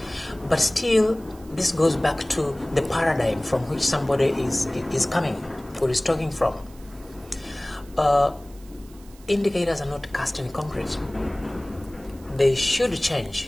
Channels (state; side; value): noise; right; hiss, 25 dB below the sound